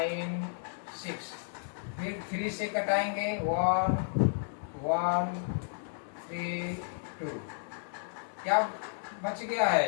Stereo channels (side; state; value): right; silent; digital silence